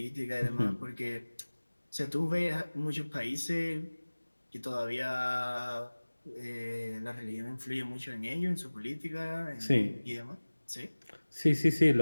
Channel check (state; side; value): inverted; both; correlation -1.00